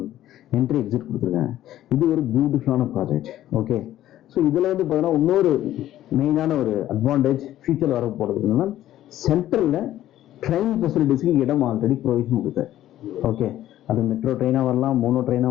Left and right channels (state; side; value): quieter; right; 13.2 dB